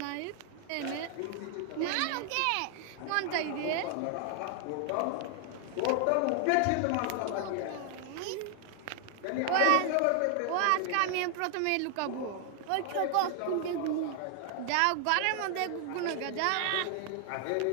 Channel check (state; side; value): different; both; correlation 0.00